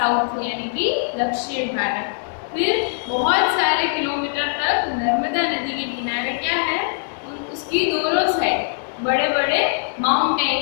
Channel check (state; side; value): silent; right; digital silence